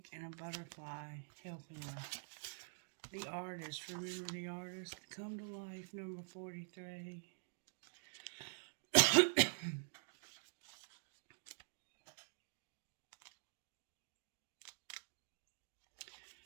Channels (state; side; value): silent; left; digital silence